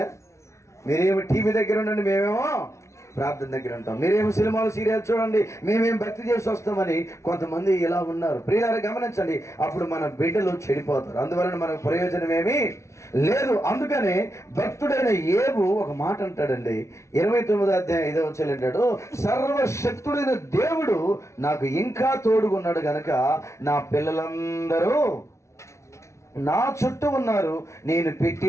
మీరేమో టీవీ దగ్గర ఉండండి, మేమేమో ప్రార్థన దగ్గర ఉంటాం, మీరేమో సినిమాలు సీరియల్ చూడండి, మేమేం భక్తి చేసి వస్తామని కొంతమంది ఇలా ఉన్నారు. ప్రియులారా గమనించండి, అప్పుడు మన బిడ్డలు చెడిపోతారు. అందువలన మనకు ప్రయోజనం ఏమీ లేదు. అందుకనే భక్తుడైన యేబు ఒక మాట అంటాడండి, 29వ అధ్యాయం 5వ వచనం అంటాడు, సర్వశక్తుడైన దేవుడు నాకు ఇంకా తోడుగున్నాడు గనక నా పిల్లలందరూ నా చుట్టూ ఉన్నారు, నేను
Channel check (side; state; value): right; late; 0.14 ms